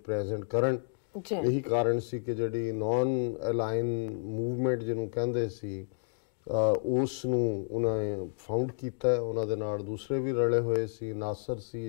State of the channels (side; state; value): right; silent; digital silence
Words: प्रेजेंट करन। यही कारण सी कि जिहड़ी नॉन अलाइन मूवमेंट जिन्हों कहंदे सी उस नूं उन्हें फाउंड कीता है। उन्हां दे नाल दूसरे भी रले होए सी, नासर सी